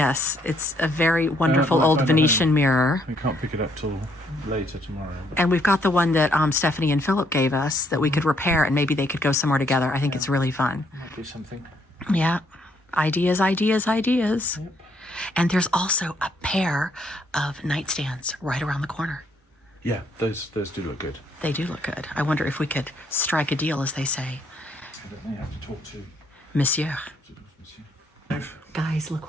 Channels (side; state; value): both; normal; correlation 0.70